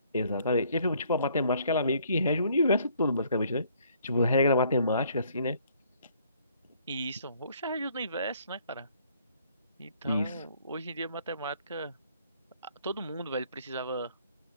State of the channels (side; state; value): both; inverted; correlation -0.63